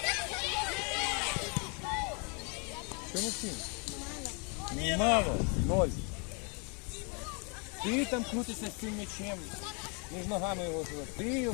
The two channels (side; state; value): right; quieter; 35.0 dB